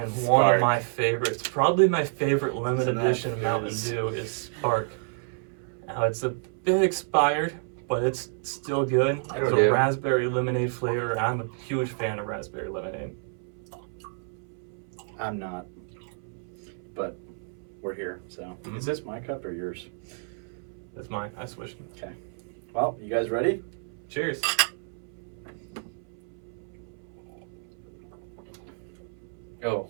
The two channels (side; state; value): left; silent; 58 dB below the other